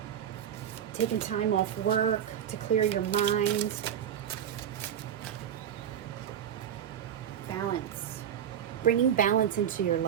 taking time off work to clear your mind. Balance. Bringing balance into your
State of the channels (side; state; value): left; quieter; 9.5 dB